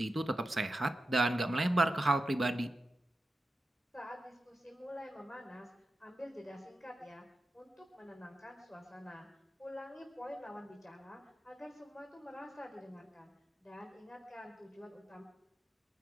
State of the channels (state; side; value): normal; both; correlation 0.91